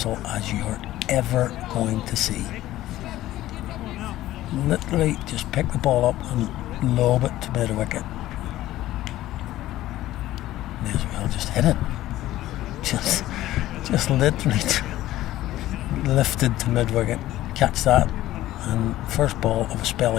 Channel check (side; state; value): right; quieter; 15.0 dB